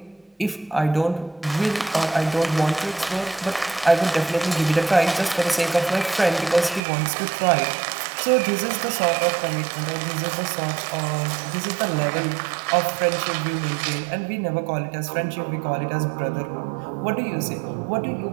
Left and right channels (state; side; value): drops out; left; at 6.8 s